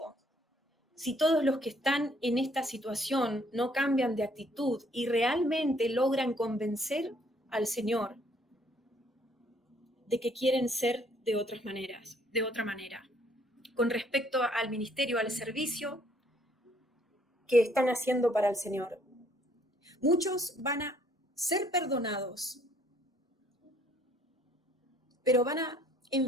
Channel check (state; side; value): normal; both; correlation 0.64